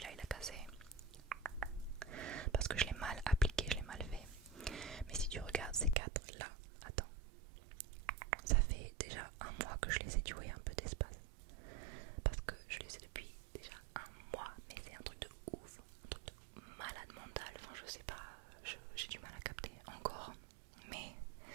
il a cassé parce que je l'ai mal appliqué, je l'ai mal fait. Mais si tu regardes ces quatre là, attends, ça fait déjà un mois que je les ai, tu vois, il y a un peu d'espace. Parce que je les ai depuis déjà un mois, mais c'est un truc de ouf, un truc de malade mental, enfin je sais pas, j'ai du mal à capter encore. Mais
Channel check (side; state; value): left; drops out; at 6.0 s